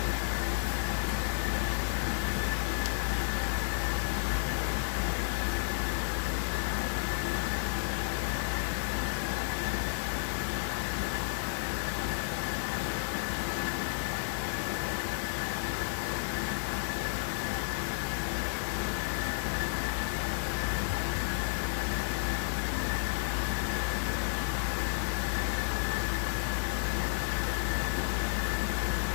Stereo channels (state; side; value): silent; right; digital silence